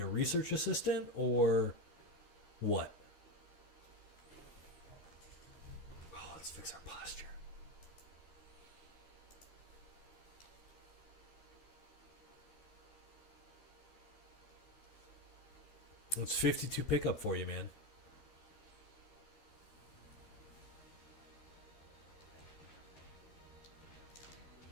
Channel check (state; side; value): late; right; 13 ms